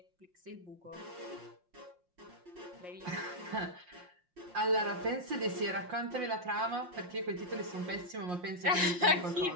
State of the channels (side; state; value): left; late; 5.6 ms